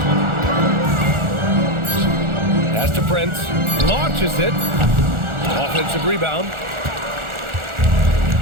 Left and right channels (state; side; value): late; left; 1.4 ms